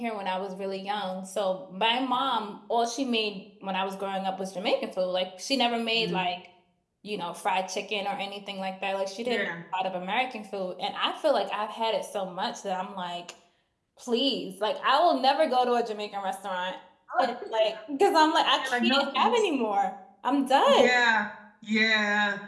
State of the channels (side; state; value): both; identical; correlation 1.00